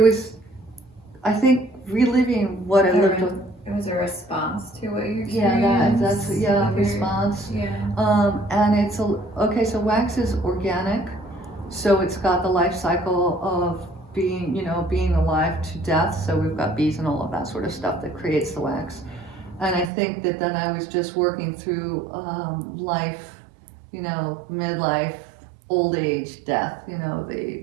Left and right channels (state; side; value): drops out; left; at 19.9 s